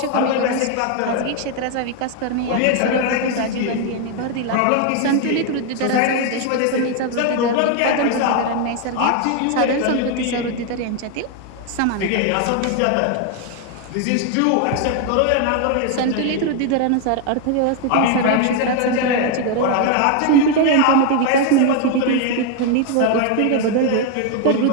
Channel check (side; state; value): both; different; correlation 0.01